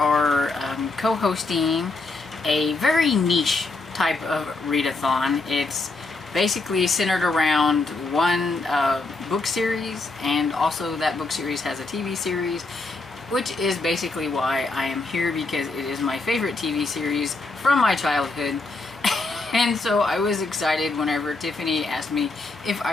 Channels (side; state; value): right; quieter; 3.4 dB